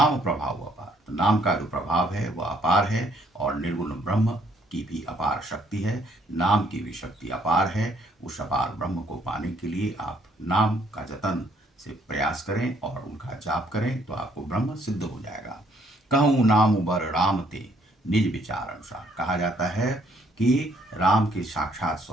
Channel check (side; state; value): both; normal; correlation 0.67